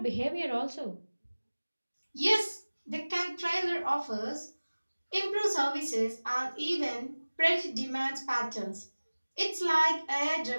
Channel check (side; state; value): both; inverted; correlation -1.00